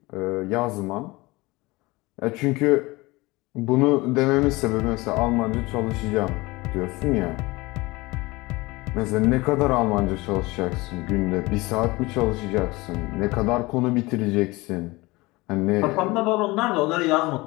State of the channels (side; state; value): right; quieter; 22.3 dB